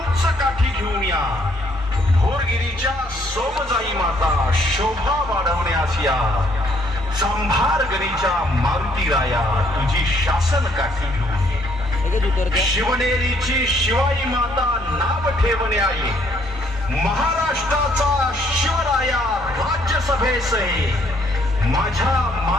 काठी घेऊन या, भोरगिरीच्या सोमजाई माता शोभा वाढवण्यास या, चांभारगणीच्या मारुती राया तुझी शासन काठी घेऊन ये, शिवनेरीची शिवाई माता नाव ठेवण्या ये, महाराष्ट्राचा शिवराया राज्यसभेस आहे, माझ्या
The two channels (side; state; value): both; normal; correlation 0.67